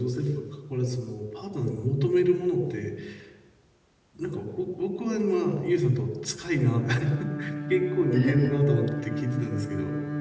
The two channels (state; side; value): identical; both; correlation 1.00